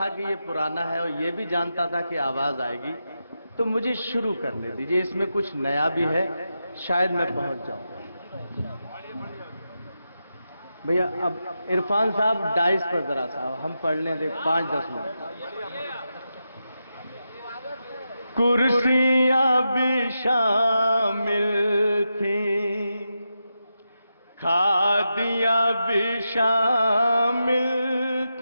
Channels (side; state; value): both; inverted; correlation -0.88